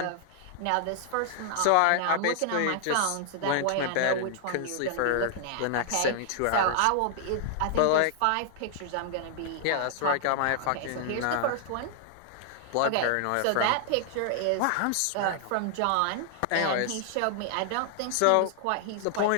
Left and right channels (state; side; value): different; both; correlation 0.00